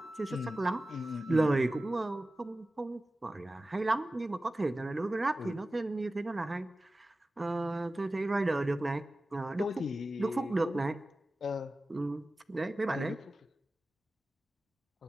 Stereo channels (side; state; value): both; normal; correlation 0.95